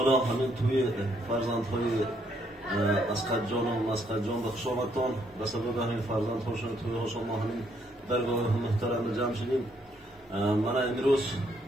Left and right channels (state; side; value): normal; both; correlation 0.71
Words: hamon to'y farzandhoy Asqatjon va Masqatjon va xushomadton va sabab hamon farzandhoshon to'y xushomadning dargohi muhtaram jamshidin. Mana imroz